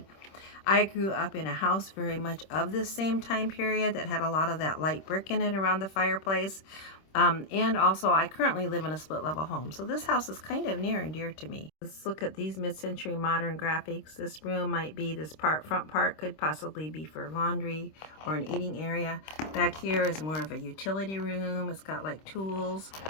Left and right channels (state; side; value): late; right; 26 ms